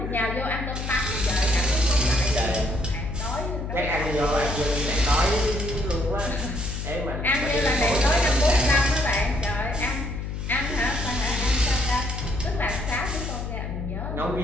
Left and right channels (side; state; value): left; noise; hum, 5 dB below the sound